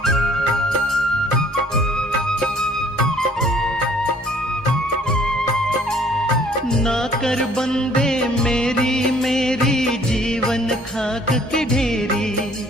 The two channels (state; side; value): normal; both; correlation 0.58